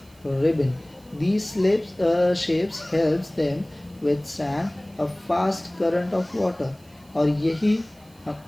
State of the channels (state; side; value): noise; right; hiss, 29 dB below the sound